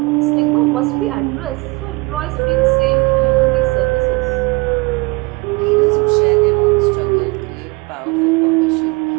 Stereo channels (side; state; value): left; quieter; 25.6 dB